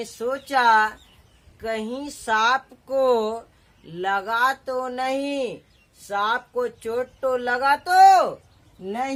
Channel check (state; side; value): identical; both; correlation 1.00